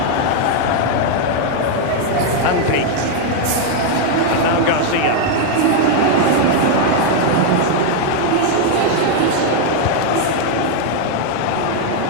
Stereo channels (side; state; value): both; different; correlation 0.00